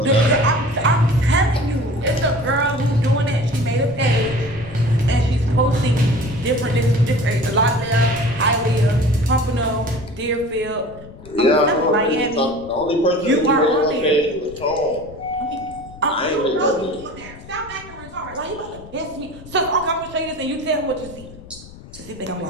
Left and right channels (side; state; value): left; noise; rumble, 18 dB below the sound